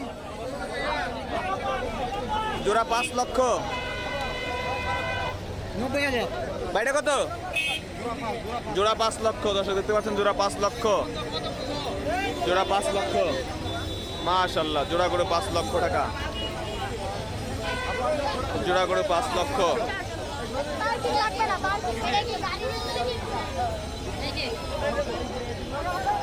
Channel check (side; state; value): both; identical; correlation 1.00